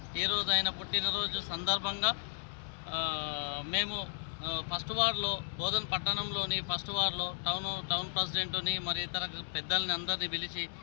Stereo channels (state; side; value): silent; right; 55 dB below the other